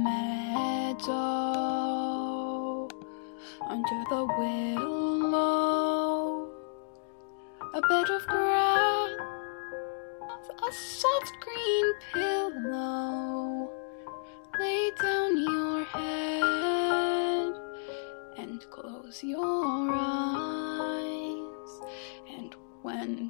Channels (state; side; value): silent; right; digital silence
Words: meadow, under the willow, a bed of grass, a soft green pillow. Lay down your head and close your eyes, and when